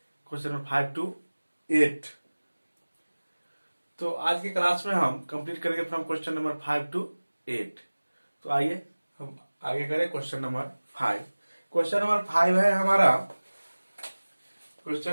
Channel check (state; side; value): inverted; both; correlation -1.00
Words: क्वेश्चन नंबर 5 to 8। तो आज की क्लास में हम कंप्लीट करेंगे फ्रॉम क्वेश्चन नंबर 5 to 8। तो आइए हम आगे करें क्वेश्चन नंबर 5। क्वेश्चन नंबर 5 है हमारा,